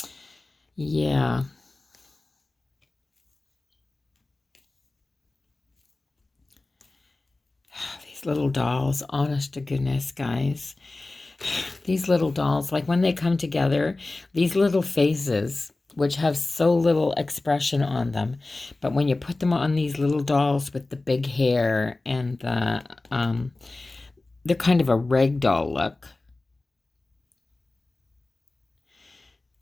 Yeah. These little dolls, honest to goodness, guys. These little dolls, like when they come together, these little faces, which have so little expression on them, but when you put them on these little dolls with the big hair and they're kind of a rag doll look.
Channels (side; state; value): right; quieter; 3.1 dB